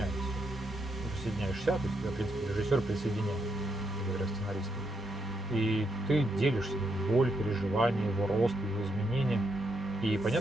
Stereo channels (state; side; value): normal; both; correlation 0.79